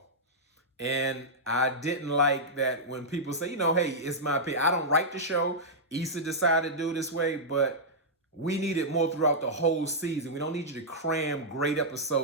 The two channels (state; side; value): normal; both; correlation -0.09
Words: And I didn't like that when people say, hey, it's my opinion. I don't write the show. Issa decided to do it this way, but we needed more throughout the whole season. We don't need you to cram great